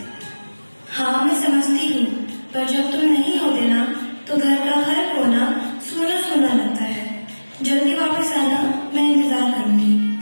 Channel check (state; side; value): inverted; both; correlation -1.00